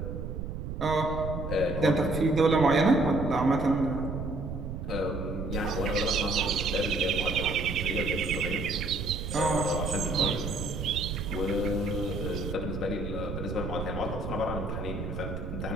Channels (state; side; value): noise; right; rumble, 5 dB below the sound